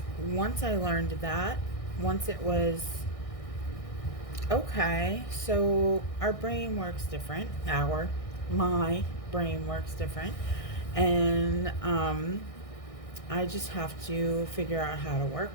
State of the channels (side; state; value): right; late; 1.6 ms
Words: once I learned that, once it was, okay, so our brain works different. My brain works different. And I just have to figure out how to